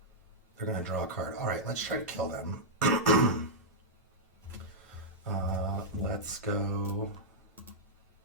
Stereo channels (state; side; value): normal; both; correlation -0.08